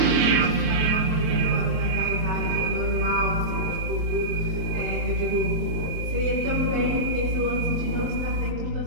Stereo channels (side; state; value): left; late; 24 ms